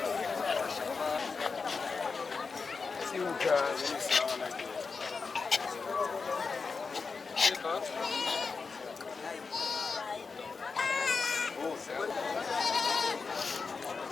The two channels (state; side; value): quieter; right; 4.7 dB